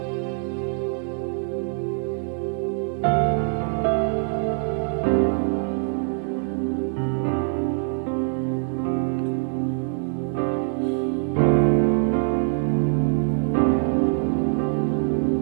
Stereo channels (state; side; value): silent; left; 61 dB below the other